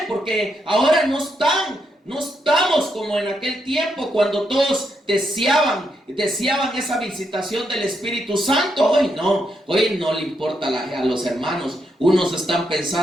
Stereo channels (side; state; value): both; normal; correlation 0.80